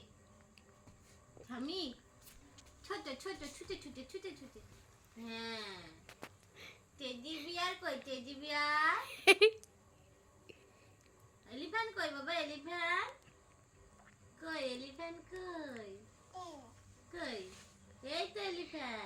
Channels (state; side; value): identical; both; correlation 1.00